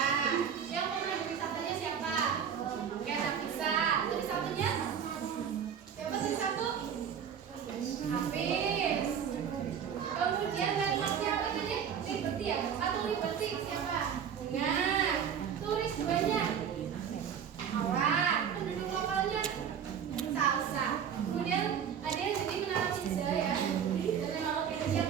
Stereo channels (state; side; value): quieter; left; 8.0 dB